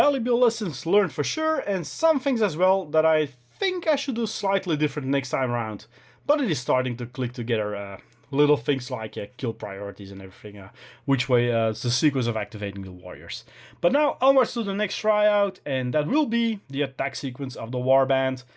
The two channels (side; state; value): both; identical; correlation 1.00